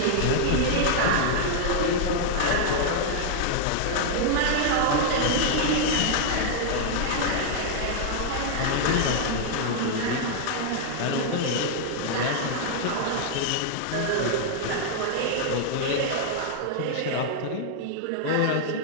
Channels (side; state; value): both; different; correlation 0.00